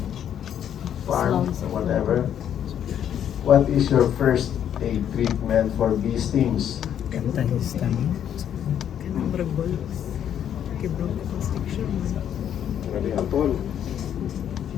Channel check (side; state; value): right; quieter; 9.6 dB